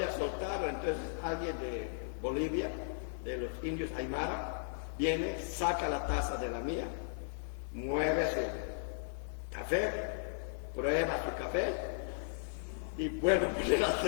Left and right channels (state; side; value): silent; right; 54 dB below the other